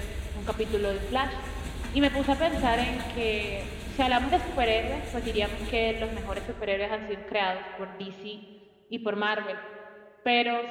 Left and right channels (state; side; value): identical; both; correlation 1.00